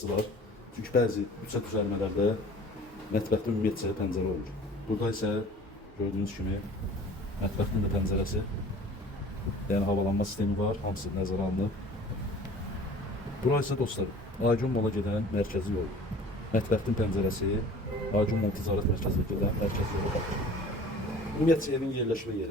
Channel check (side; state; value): both; normal; correlation 0.46